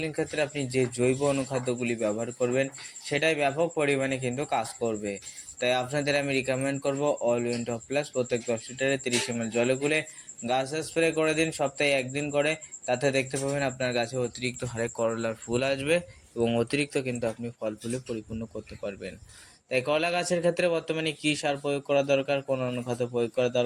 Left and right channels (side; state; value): both; identical; correlation 1.00